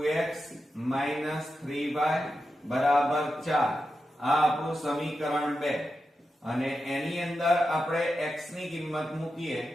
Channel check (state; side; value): normal; both; correlation 0.89